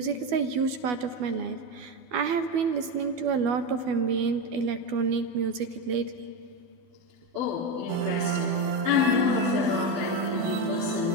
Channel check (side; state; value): left; late; 12 ms